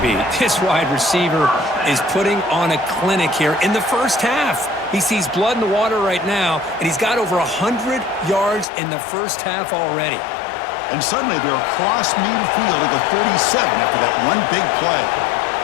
This wide receiver is putting on a clinic here in the first half. He sees blood in the water right now, and he's got over 100 yards in the first half already. And suddenly they're across midfield at the 47 after that one big play.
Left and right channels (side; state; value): right; drops out; at 8.7 s